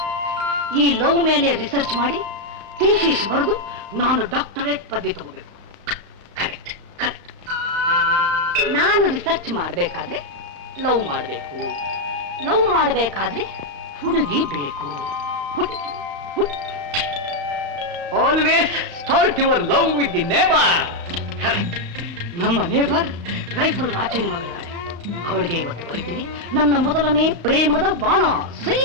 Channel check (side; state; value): left; late; 35 ms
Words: ಈ ಲವ್ ಮೇಲೆ ರಿಸರ್ಚ್ ಮಾಡಿ ಥೀಸಿಸ್ ಬರೆದು ನಾನು ಡಾಕ್ಟರೇಟ್ ಪದವಿ ತಗೋಬೇಕು. ಕರೆಕ್ಟ್. ನಾನು ರಿಸರ್ಚ್ ಮಾಡಬೇಕಾದ್ರೆ ಲವ್ ಮಾಡಬೇಕು, ಲವ್ ಮಾಡಬೇಕಾದ್ರೆ ಹುಡುಗಿ ಬೇಕು. Always start your love with the neighbour. ನಮ್ಮ ನೇಬರ್ ರೈಫಲ್ ರಾಚೇನ್ ಮಗಳಿದ್ದಾಳೆ. ಅವಳಿಗೆ ಇವತ್ತು ಬರೀತೀನಿ ನನ್ನ ಮೊದಲನೇ ಪ್ರೇಮದ ಬಾಣ ಸೈ